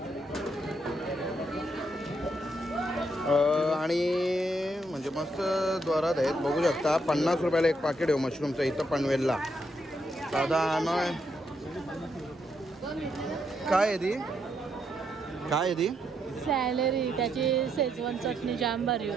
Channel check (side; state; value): both; normal; correlation 0.77